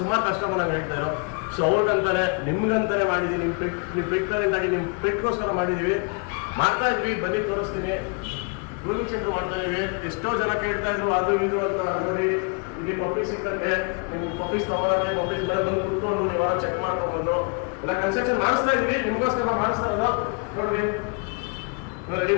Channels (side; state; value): right; quieter; 35.3 dB